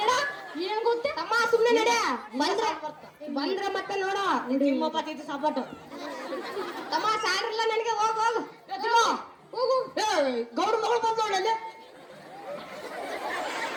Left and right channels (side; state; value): both; identical; correlation 1.00